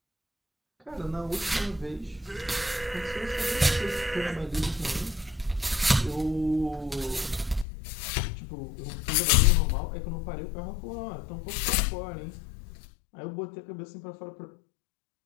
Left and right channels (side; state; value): right; drops out; at 7.7 s